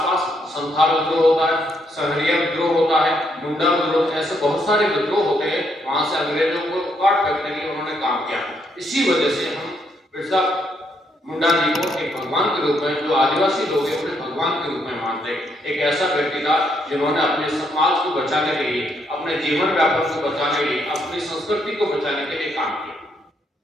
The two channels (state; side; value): normal; both; correlation 0.74